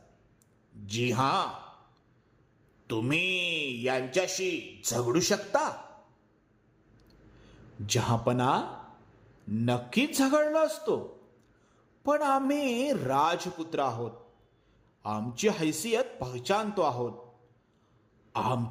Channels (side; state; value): both; identical; correlation 1.00